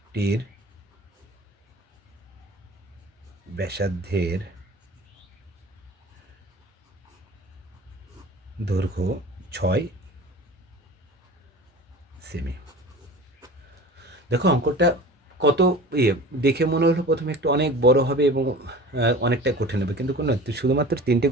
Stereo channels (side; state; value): both; normal; correlation 0.39